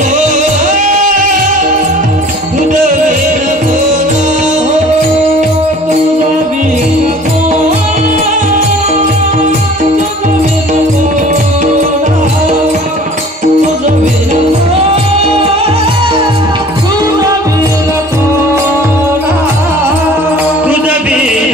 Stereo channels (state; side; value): normal; both; correlation 0.48